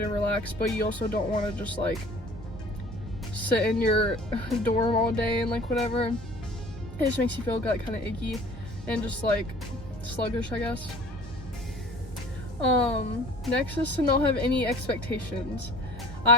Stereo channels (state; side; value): normal; both; correlation 0.47